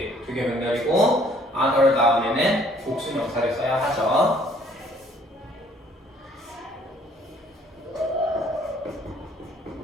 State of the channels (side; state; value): both; normal; correlation 0.60